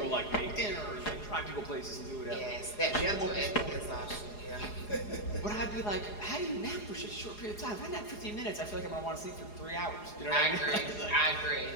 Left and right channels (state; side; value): late; right; 4.8 ms